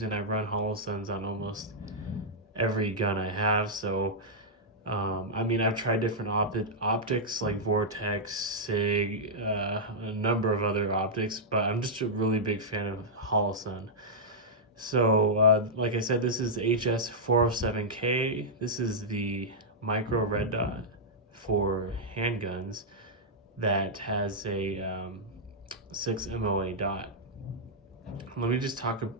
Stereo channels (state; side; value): normal; both; correlation -0.09